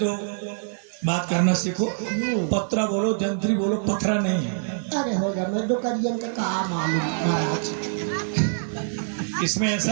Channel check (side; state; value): left; silent; 62 dB below the other